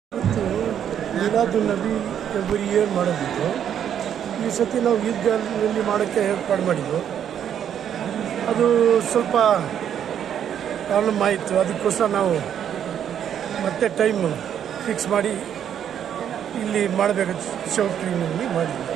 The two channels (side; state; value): left; quieter; 9.3 dB